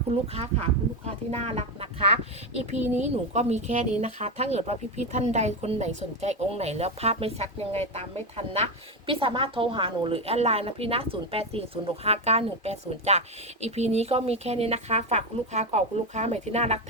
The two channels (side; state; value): both; normal; correlation 0.12